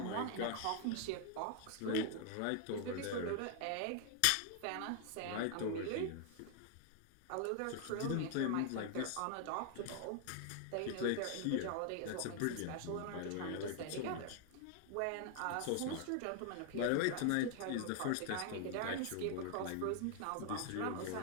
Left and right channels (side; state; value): both; different; correlation 0.00